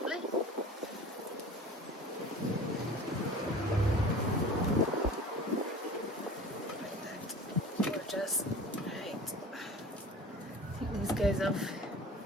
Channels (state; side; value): normal; both; correlation 0.39